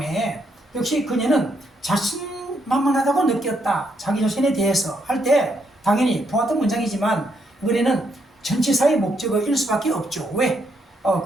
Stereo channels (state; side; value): normal; both; correlation 0.76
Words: 역시 그녀는 자신만만하다고 느꼈다. 자기 자신에 대해서 할 때 당연히 보았던 문장이지만 이번에는 전치사의 목적어일 수밖에 없죠. 왜?